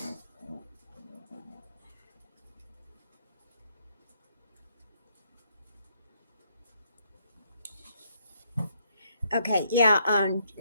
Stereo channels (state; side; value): inverted; both; correlation -0.72